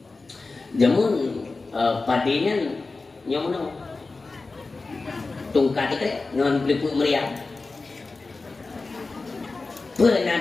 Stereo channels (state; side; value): quieter; right; 3.7 dB